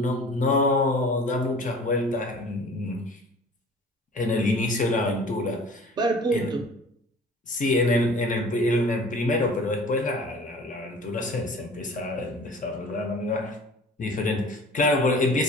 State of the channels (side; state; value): both; normal; correlation 0.45